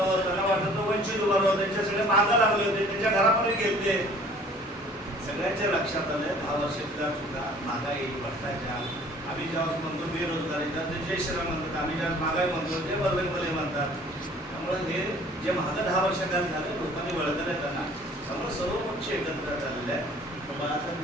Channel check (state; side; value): normal; both; correlation 0.52